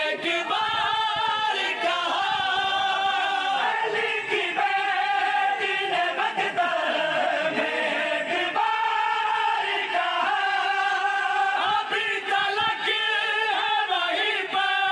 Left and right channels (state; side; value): identical; both; correlation 1.00